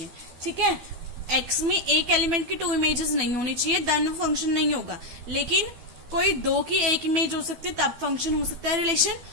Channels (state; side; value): late; left; 12 ms